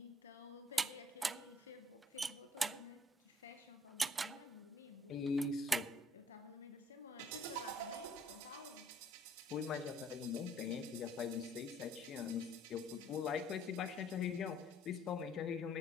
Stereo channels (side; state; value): both; normal; correlation 0.62